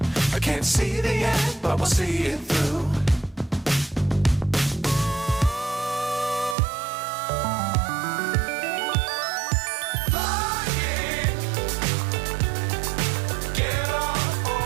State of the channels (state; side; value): drops out; left; at 6.6 s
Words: I can't see the end, but we'll see it through.